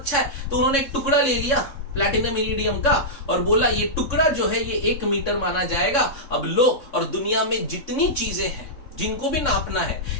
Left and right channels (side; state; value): right; late; 3.6 ms